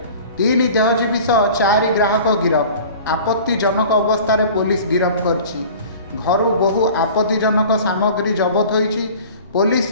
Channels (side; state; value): both; inverted; correlation -0.42